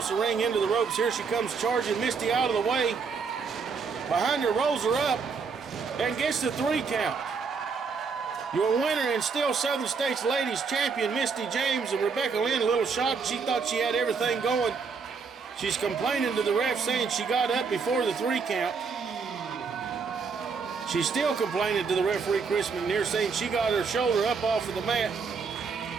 the ring into the ropes. Here she comes charging. Misty out of the way. Behind her, rolls her up and gets the 3 count. Your winner and still Southern States Ladies Champion, Misty James. And Rebecca Lynn, a little shocked. She thought she had everything going. She's complaining to the ref, saying she got up before the 3 count. She's still complaining to the referee, Chris McNair, saying she got her shoulder up off of the mat.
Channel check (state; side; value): quieter; left; 5.3 dB